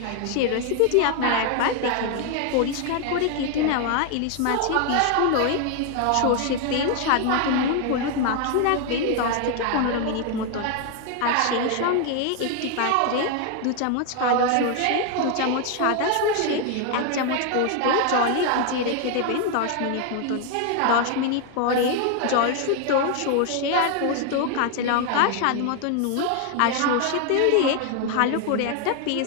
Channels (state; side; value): different; both; correlation 0.01